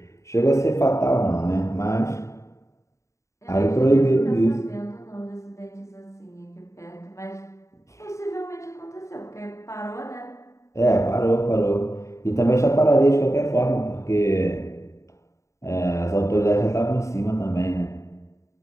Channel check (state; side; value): late; right; 0.14 ms